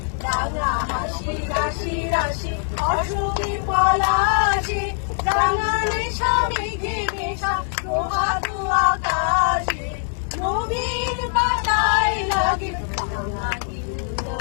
রাঙা হাসি রাশি রাশি অসুখী পলাশে, রাঙালে স্বামীকে মেশা প্রভাতু আকাশে, নবীন পাতায় লাগে রাঙা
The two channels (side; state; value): right; silent; 64 dB below the other